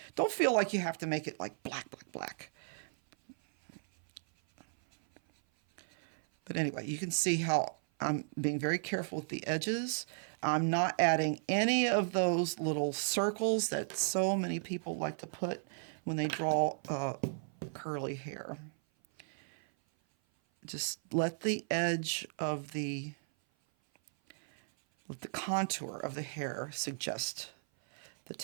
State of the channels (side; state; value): left; silent; 54 dB below the other